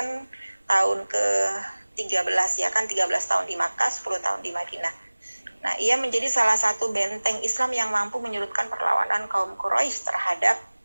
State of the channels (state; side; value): inverted; both; correlation -1.00